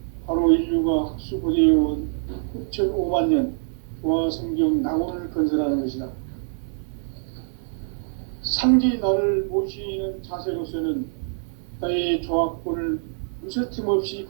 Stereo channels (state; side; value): silent; left; digital silence